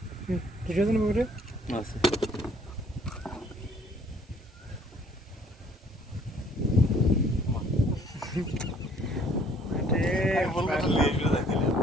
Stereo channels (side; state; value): both; normal; correlation 0.59